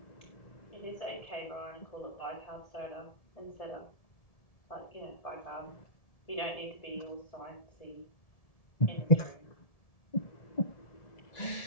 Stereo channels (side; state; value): right; late; 1.7 ms